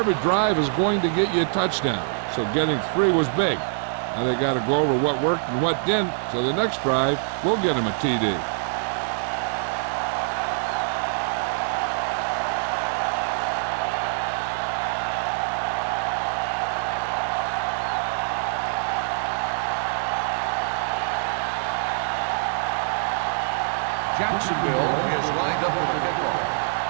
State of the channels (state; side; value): silent; left; digital silence